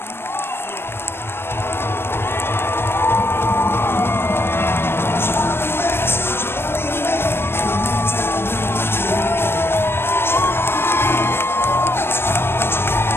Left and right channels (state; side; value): late; right; 0.11 ms